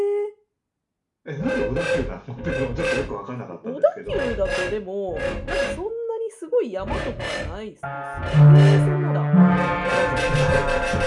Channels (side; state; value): both; identical; correlation 1.00